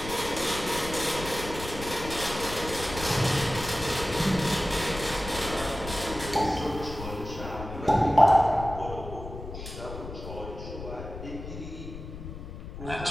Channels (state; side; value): noise; left; rumble, 10 dB below the sound